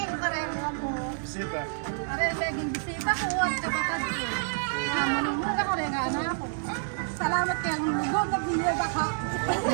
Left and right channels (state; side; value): silent; left; digital silence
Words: Bisita. Salamat kay ang lugod na biniyaba ka.